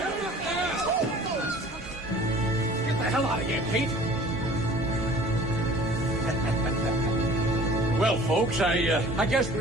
Get the hell out of here, Pete. Well, folks, I guess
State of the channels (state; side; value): normal; both; correlation 0.47